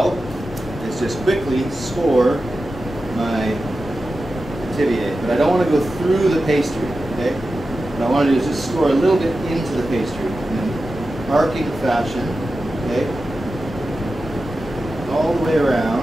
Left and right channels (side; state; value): both; normal; correlation 0.93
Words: is just quickly score my Pithivier. But I don't want to go through the pastry, okay? What I want to do is just score a little bit into the pastry in an arcing fashion, okay? All the way